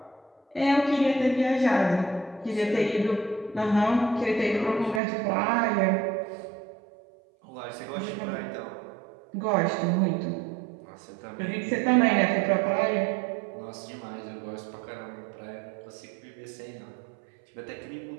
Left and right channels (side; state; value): left; drops out; at 5.0 s